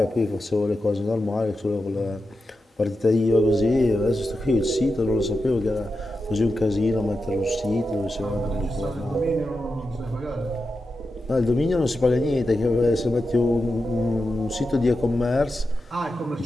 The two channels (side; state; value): both; normal; correlation 0.89